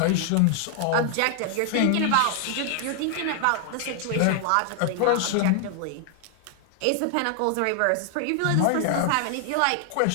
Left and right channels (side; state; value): both; different; correlation 0.00